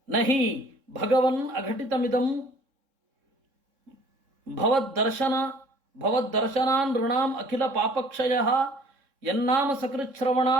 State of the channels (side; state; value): left; late; 3.7 ms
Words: ನಹಿ ಭಗವನ್ ಅಘಟಿತಮಿದಂ ಭವದ್ದರ್ಶನಾನ್ ಋಣಾಂ ಅಖಿಲ ಪಾಪಕ್ಷಯ ಯನ್ನಾಮ